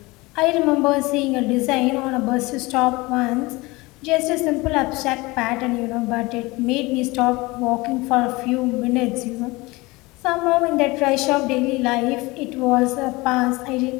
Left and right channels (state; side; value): quieter; right; 22.7 dB